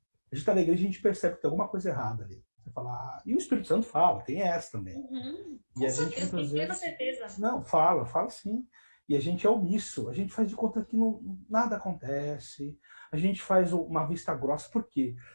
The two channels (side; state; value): both; inverted; correlation -1.00